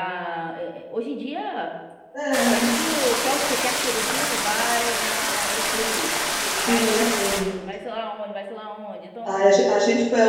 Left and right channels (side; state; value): both; identical; correlation 1.00